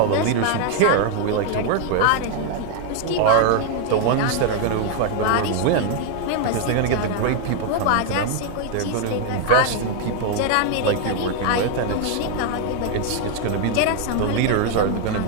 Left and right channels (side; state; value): both; different; correlation 0.00